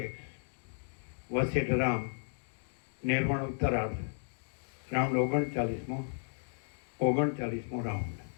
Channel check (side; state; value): right; silent; digital silence